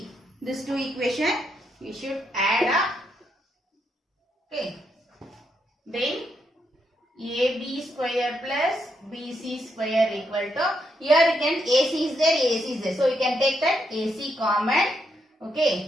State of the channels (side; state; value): both; normal; correlation 0.79